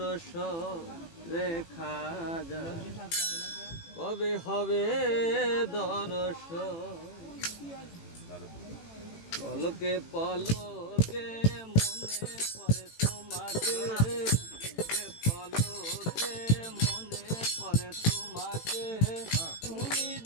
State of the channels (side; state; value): right; late; 18 ms